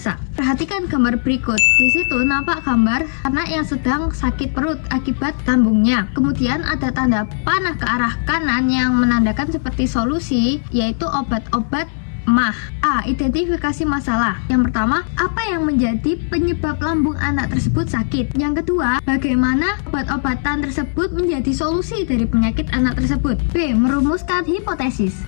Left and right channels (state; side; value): silent; right; 55 dB below the other